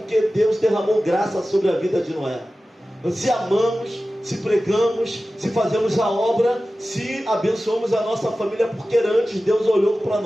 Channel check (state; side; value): normal; both; correlation 0.95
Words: Deus derramou graça sobre a vida de Noé. Se amamos, se pregamos, se fazemos a obra, se abençoamos a nossa família, porque antes Deus olhou para